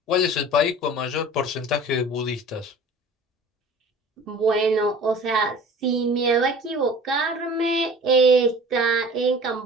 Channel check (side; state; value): both; normal; correlation 0.43